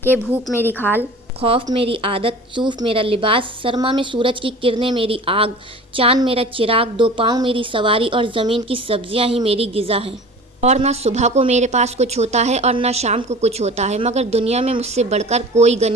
کہ بھوک میری کھال، خوف میری عادت، صوف میرا لباس، سرما میں سورج کی کرنیں میری آگ، چاند میرا چراغ، دو پاؤں میری سواری اور زمین کی سبزیاں ہی میری غذا ہیں۔ اور نہ صبح کو میرے پاس کچھ ہوتا ہے اور نہ شام کو کچھ ہوتا ہے، مگر دنیا میں مجھ سے بڑھ کر کوئی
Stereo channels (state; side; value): normal; both; correlation 0.40